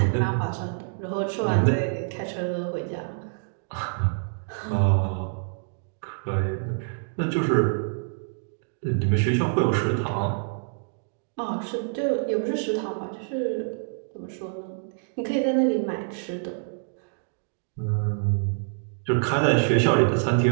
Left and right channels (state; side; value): silent; left; digital silence